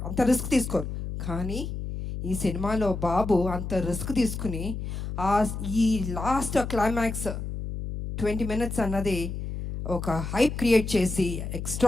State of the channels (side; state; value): left; noise; hum, 5 dB below the sound